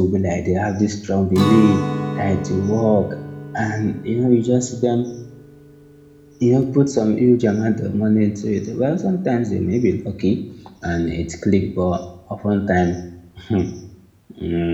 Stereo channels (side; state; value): both; identical; correlation 1.00